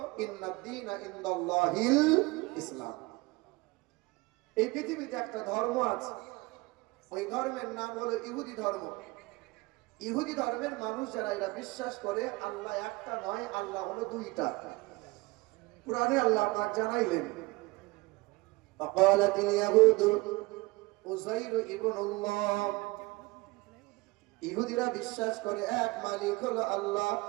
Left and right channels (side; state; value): left; quieter; 23.1 dB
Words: ইন্নাদ-দীনা ইনদাল্লাহিল ইসলাম। এই পৃথিবীতে একটা ধর্ম আছে, ওই ধর্মের নাম হলো ইহুদি ধর্ম। ইহুদি ধর্মের মানুষ যারা এরা বিশ্বাস করে আল্লাহ একটা নয়, আল্লাহ হলো দুইটা। কুরআনে আল্লাহ পাক জানাইলেন, ফাকালাতিল ইয়াহুদু উযাইর ইবনুল্লাহ। ইহুদিরা বিশ্বাস করে এক মালিক হলো আল্লাহ,